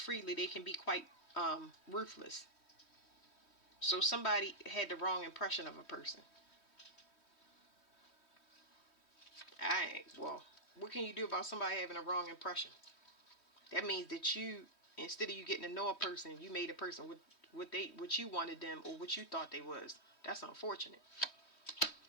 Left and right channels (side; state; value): right; late; 3.1 ms